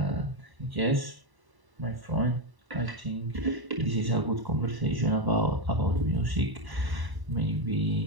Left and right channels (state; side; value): late; left; 1.0 ms